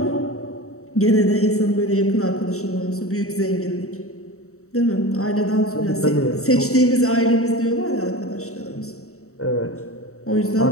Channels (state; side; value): late; right; 0.64 ms